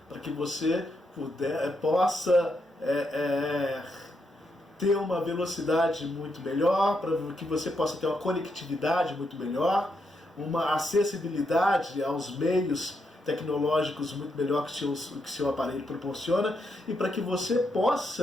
para que você possa ter uma velocidade muito melhor, para que você possa ter uma conectividade muito melhor, uma acessibilidade aos meios tecnológicos muito melhor que o seu aparelho proporciona, e para que você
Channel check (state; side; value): normal; both; correlation 0.80